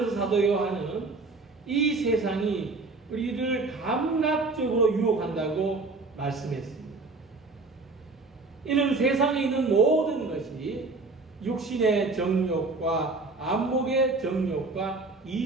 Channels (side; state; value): left; quieter; 3.6 dB